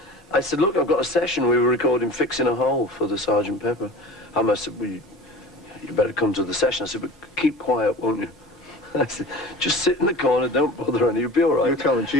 I said, "Look, I've got a session. We were recording Fixing a Hole for the Sgt. Pepper." I said, "Well, you better come to the session." I said, "But keep quiet, won't you?" I said, "Just sit in the corner, don't bother any, you'll be all right." You're telling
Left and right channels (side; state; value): both; normal; correlation 0.38